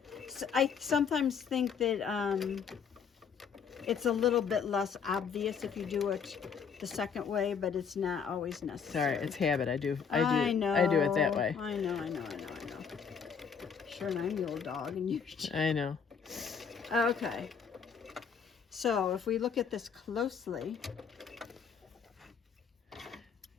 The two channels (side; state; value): right; quieter; 6.5 dB